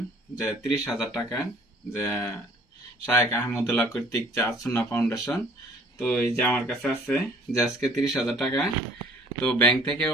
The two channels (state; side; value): normal; both; correlation 0.55